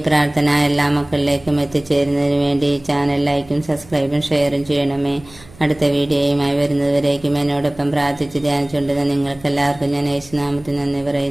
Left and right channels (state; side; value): noise; right; hum, 23 dB below the sound